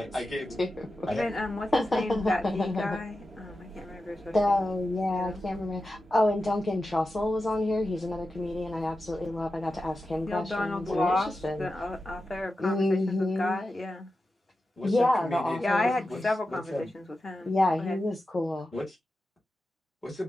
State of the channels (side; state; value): both; normal; correlation 0.91